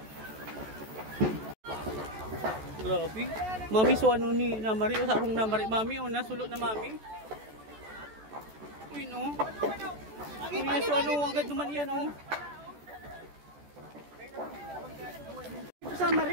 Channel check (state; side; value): late; left; 14 ms